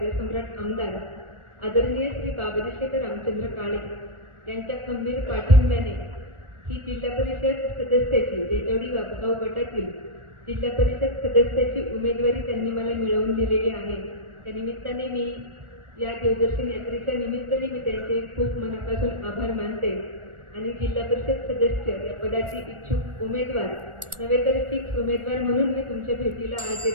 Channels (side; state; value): left; late; 1.4 ms